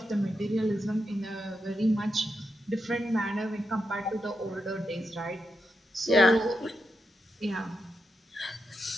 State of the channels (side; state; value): both; normal; correlation 0.85